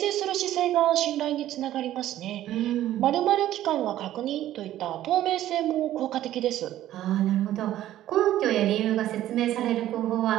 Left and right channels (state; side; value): quieter; left; 13.2 dB